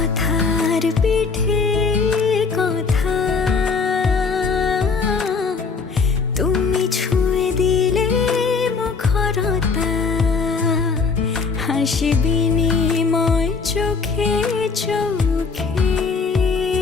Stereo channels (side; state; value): right; quieter; 4.8 dB